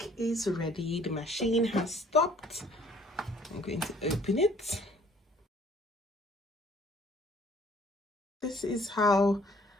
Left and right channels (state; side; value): normal; both; correlation 0.58